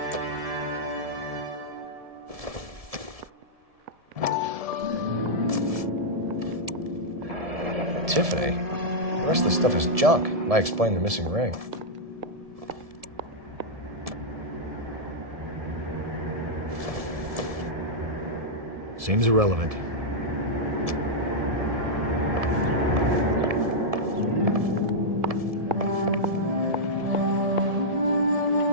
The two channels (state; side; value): late; left; 1.7 ms